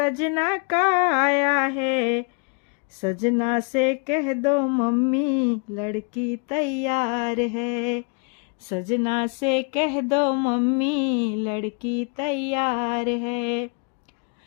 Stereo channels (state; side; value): quieter; right; 36.7 dB